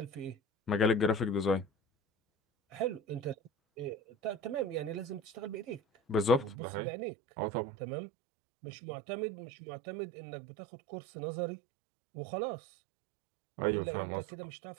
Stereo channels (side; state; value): left; drops out; at 6.6 s